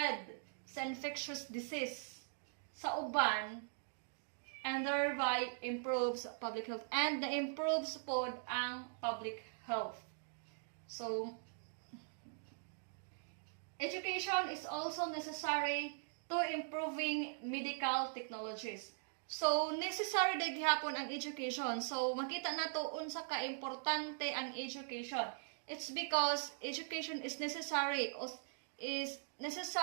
sa infectious disease sa uban and thereby improves public health. And na-improves po ang public health. So, education is also necessary to improving medical technologies. So, necessary na gihapon ang education. So, makita na to unsa ka importante ang education. It's because education is necessary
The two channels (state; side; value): silent; left; digital silence